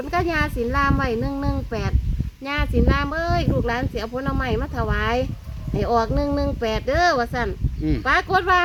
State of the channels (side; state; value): both; identical; correlation 1.00